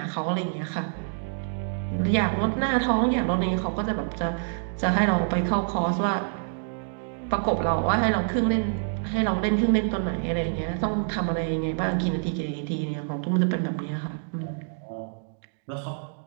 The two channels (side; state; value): left; silent; digital silence